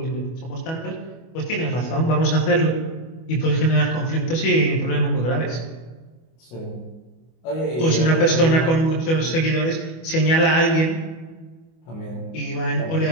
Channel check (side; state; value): right; late; 25 ms